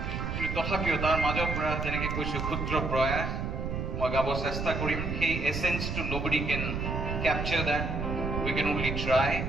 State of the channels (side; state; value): right; noise; rumble, 3 dB below the sound